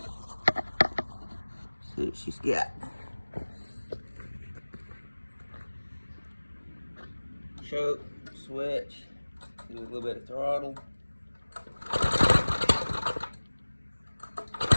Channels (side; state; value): both; inverted; correlation -1.00